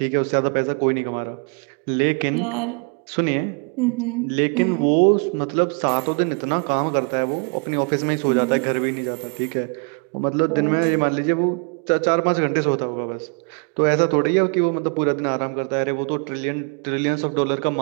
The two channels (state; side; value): quieter; left; 37.4 dB